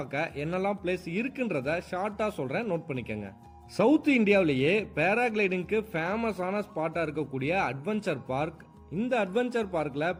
என்னெல்லாம் பிளேஸ் இருக்குன்றத ஷார்ட்டாக சொல்கிறேன், நோட் பண்ணிக்கோங்க. சவுத் இந்தியாவிலேயே பேராகிளைடிங்க்கு ஃபேமஸான ஸ்பாட்டாக இருக்கக்கூடிய அட்வென்ச்சர் பார்க். இந்த அட்வென்ச்சர் பார்க்கில்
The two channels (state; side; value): identical; both; correlation 1.00